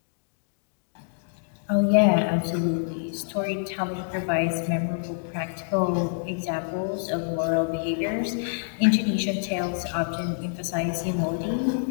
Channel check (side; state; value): right; silent; digital silence